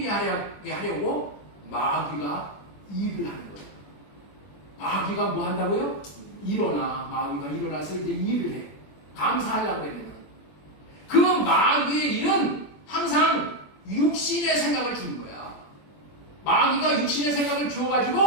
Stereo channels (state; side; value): late; right; 21 ms